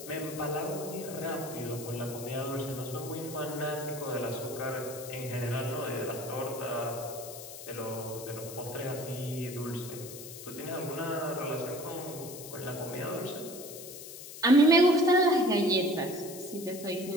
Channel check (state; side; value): noise; left; hiss, 12 dB below the sound